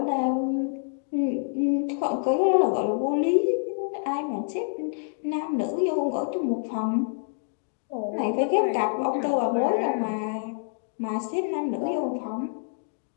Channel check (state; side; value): silent; right; 60 dB below the other